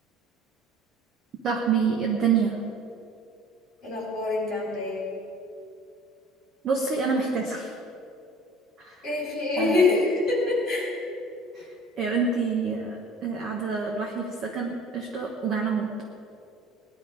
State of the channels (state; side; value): normal; both; correlation 0.46